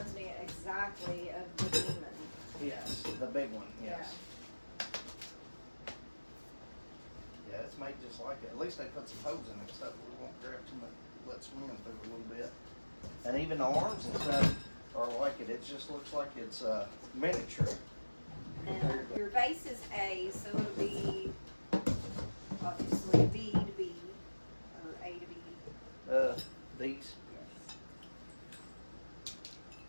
me exactly of the demon. Yes, the big one, yes. Yeah, it's made just like it. At least they put some hose in it so we won't grab too much, let swim through a little bit. And even the arms and stuff are like it. It just looks like it's miniature. And your base is A, so it'll be obviously B to B, or A to B. These. Yes.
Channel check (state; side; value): inverted; both; correlation -1.00